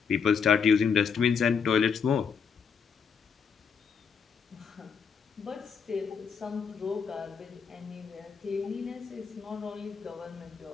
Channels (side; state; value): right; quieter; 6.4 dB